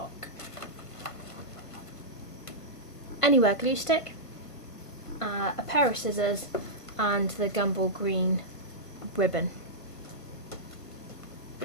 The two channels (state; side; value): late; right; 1.5 ms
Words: Anywhere glue stick, a pair of scissors, and the Gumball Green ribbon.